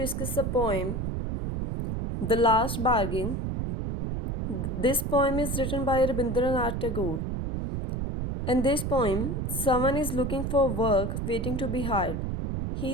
a poem, The Last Bargain. This poem is written by Rabindranath Tagore. In this poem, someone is looking for work waiting to be hired.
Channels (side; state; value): right; noise; rumble, 2 dB below the sound